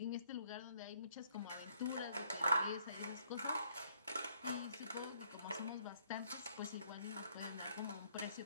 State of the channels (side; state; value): both; inverted; correlation -0.67